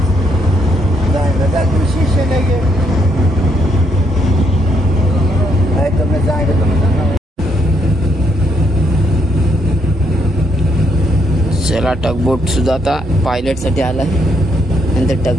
चला टगबोट सुद्धा आता पायलट साठी आलाय, नंतर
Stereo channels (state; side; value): normal; both; correlation 0.74